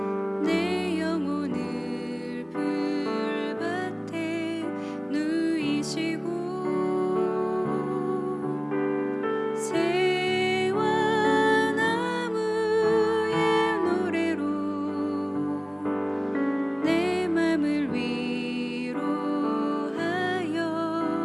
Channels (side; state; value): both; identical; correlation 1.00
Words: 내 영혼을 불밭에 누이시고 새와 나무의 노래로 내 맘을 위로하여